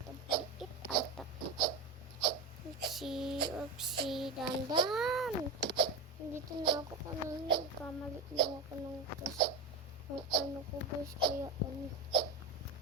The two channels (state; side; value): quieter; left; 3.3 dB